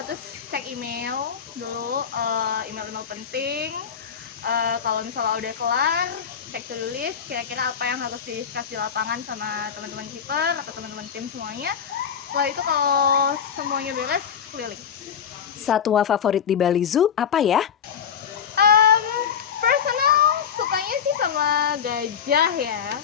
terus cek email dulu, email-email penting. Kalau misalnya udah kelar, cek to do list, kira-kira apa yang harus di-discuss di lapangan sama teman-teman keeper atau teman-teman tim semuanya. Setelah itu kalau semuanya beres, keliling. Satwa favorit di Bali Zoo apa ya? Personal sukanya sih sama gajah ya.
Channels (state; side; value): quieter; right; 7.7 dB